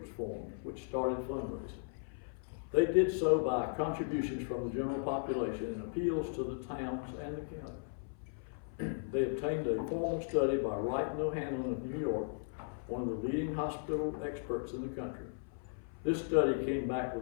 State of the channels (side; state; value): right; silent; 53 dB below the other